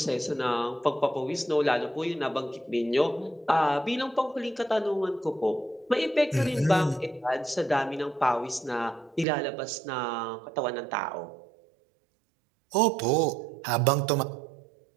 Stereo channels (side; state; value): left; drops out; at 9.2 s